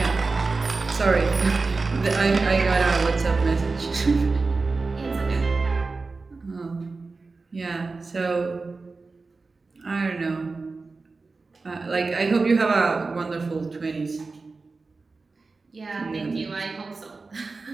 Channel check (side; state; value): left; quieter; 3.9 dB